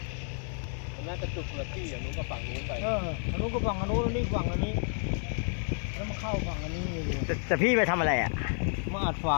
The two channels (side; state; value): right; silent; 58 dB below the other